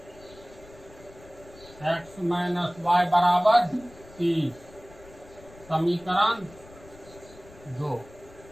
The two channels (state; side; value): noise; left; rumble, 22 dB below the sound